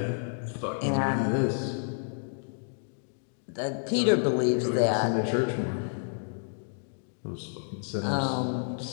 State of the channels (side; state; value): right; silent; digital silence